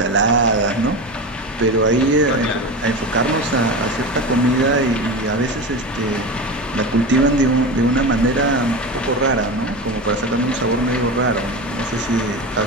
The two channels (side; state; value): both; normal; correlation 0.24